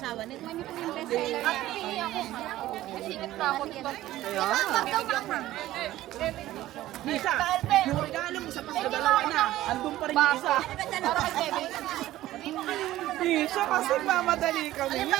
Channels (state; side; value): quieter; left; 15.0 dB